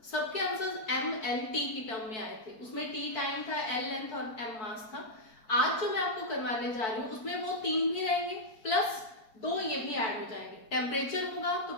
सबके आंसर्स एम एल टी की टर्म में आए थे। उसमें टी टाइम था, एल लेंथ और एम मास था। आज जो मैं आपको करवाने जा रही हूँ उसमें वो 3 भी रहेंगे, प्लस 2 ये भी ऐड हो जाएंगे। टेम्परेचर होगा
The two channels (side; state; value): right; late; 4.5 ms